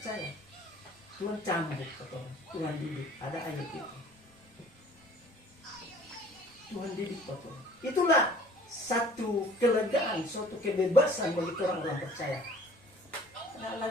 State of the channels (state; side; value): normal; both; correlation 0.51